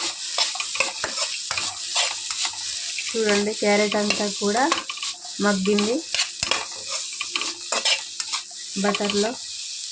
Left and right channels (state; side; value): identical; both; correlation 1.00